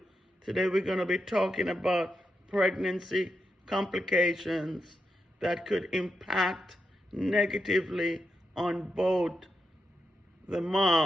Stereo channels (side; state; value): both; normal; correlation 0.85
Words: Today we're going to be talking about pregnancy complications that could impact negatively on both the